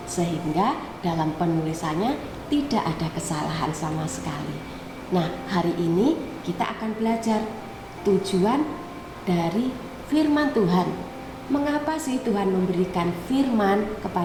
sehingga dalam penulisannya tidak ada kesalahan sama sekali. Nah, hari ini kita akan belajar tujuan dari firman Tuhan. Mengapa sih Tuhan memberikan firman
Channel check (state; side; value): identical; both; correlation 1.00